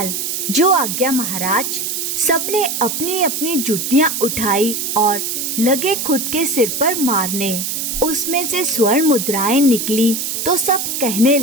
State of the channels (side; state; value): right; noise; hiss, 2 dB below the sound